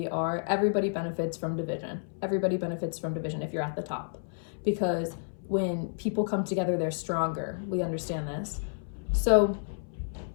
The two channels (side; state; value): right; silent; 58 dB below the other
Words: are, everybody benefits from division. Everybody benefits from division if you're at the top. Because when people come together, they're stronger. We understand this. So,